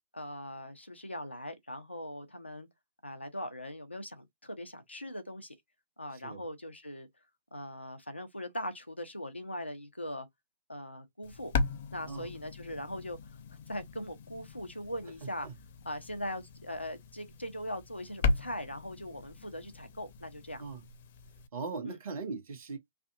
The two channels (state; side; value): inverted; both; correlation -0.61